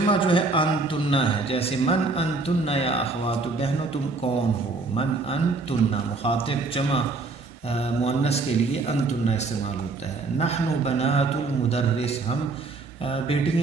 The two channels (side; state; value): left; quieter; 3.7 dB